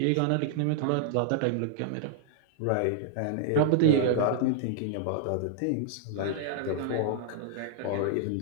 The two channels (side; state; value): both; different; correlation -0.01